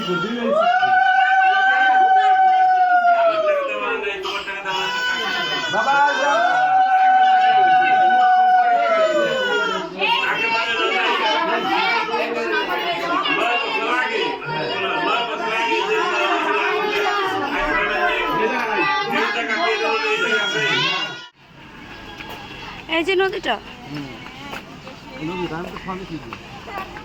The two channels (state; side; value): identical; both; correlation 1.00